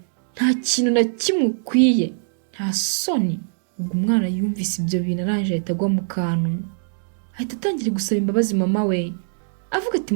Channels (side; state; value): left; silent; digital silence